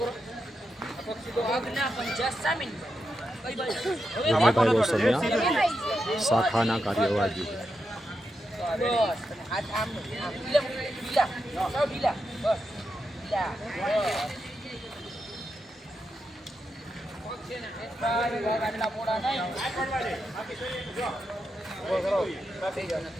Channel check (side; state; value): both; normal; correlation 0.86